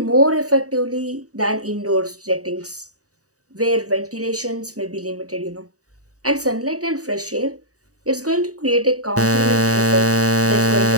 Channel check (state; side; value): late; left; 0.66 ms